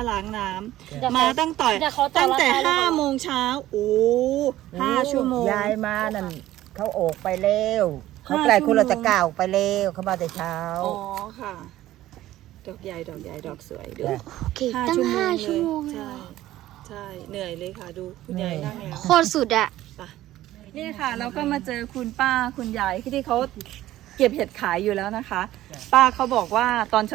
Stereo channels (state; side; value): quieter; left; 14.7 dB